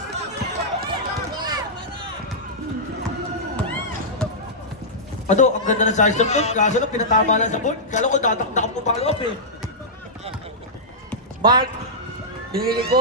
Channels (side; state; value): both; normal; correlation -0.12